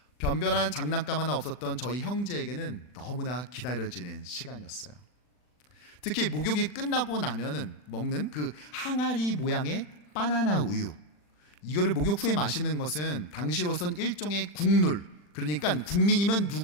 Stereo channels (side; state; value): right; late; 40 ms